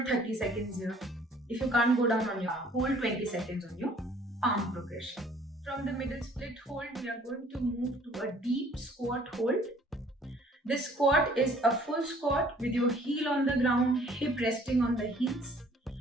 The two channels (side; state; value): both; normal; correlation 0.56